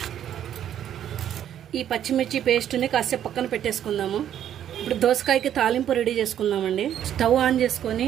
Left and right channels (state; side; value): quieter; left; 10.4 dB